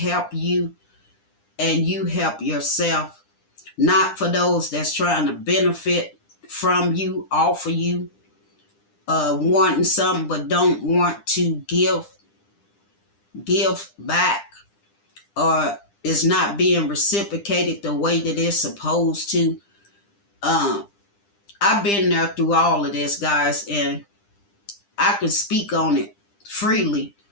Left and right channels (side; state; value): right; late; 9.9 ms